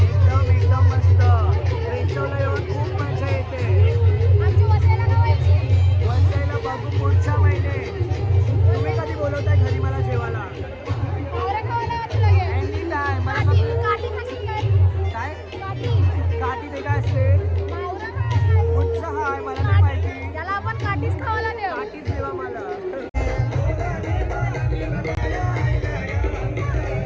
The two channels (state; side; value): identical; both; correlation 1.00